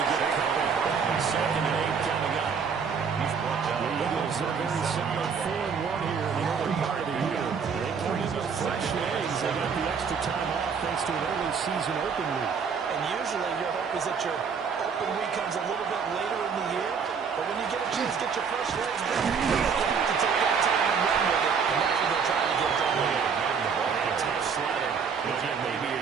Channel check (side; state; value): left; quieter; 6.2 dB